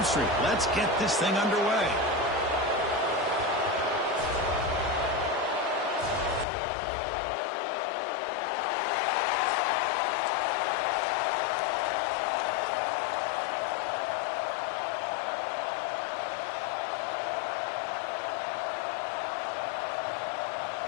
Let's get this thing underway.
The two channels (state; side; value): drops out; right; at 6.5 s